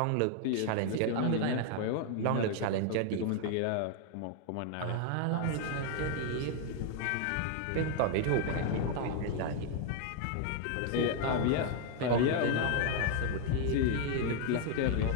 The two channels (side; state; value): both; different; correlation 0.00